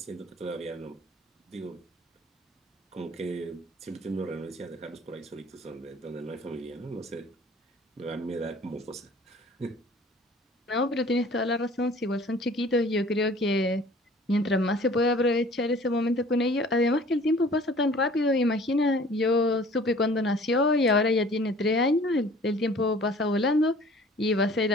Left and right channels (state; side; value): normal; both; correlation 0.50